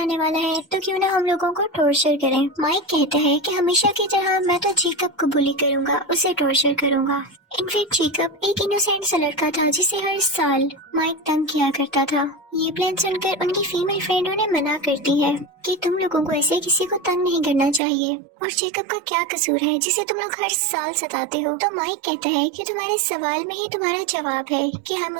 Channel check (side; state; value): left; drops out; at 17.8 s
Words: आने वाला है तो क्यों ना हम लोगों को टॉर्चर करें। माइक कहता है कि हमेशा की तरह मैं तो जेकब को बुली करूंगा, उसे टॉर्चर करूंगा। इनफैक्ट जेकब एक इनोसेंट सा लड़का था जिसे हर साल माइक तंग किया करता था। ये प्लान सुनकर उनकी फीमेल फ्रेंड उन्हें मना करती है कि तुम लोगों को ऐसे किसी को तंग नहीं करना चाहिए और जेकब का क्या कसूर है जिसे तुम लोग हर साल सताते हो। तो माइक कहता है कि तुम्हारे सवाल में ही तुम्हारा जवाब है कि हम